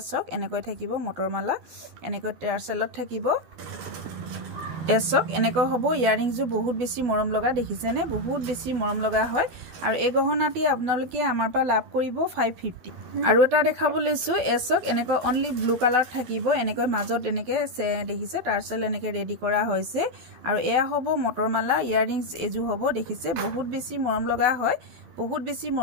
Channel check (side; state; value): left; late; 12 ms